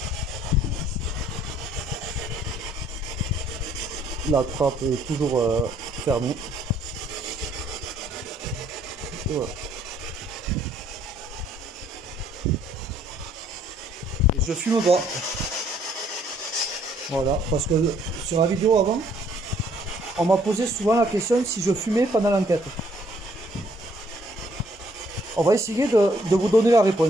La trappe est toujours fermée. Voilà. Et je fume pas. Voilà, parce que sur la vidéo avant, on m'a posé souvent la question si je fumais pendant l'enquête. On va essayer de vous donner la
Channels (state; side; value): normal; both; correlation 0.64